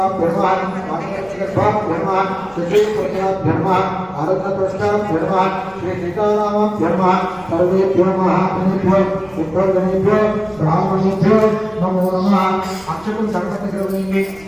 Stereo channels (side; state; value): right; noise; rumble, 26 dB below the sound